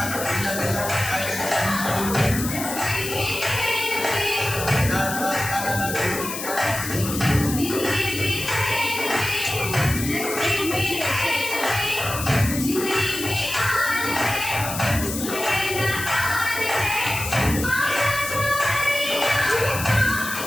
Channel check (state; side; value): noise; left; hiss, 6 dB below the sound